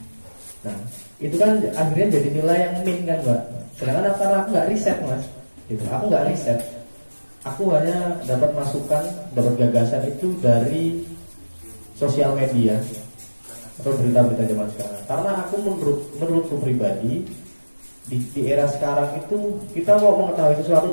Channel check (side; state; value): both; inverted; correlation -1.00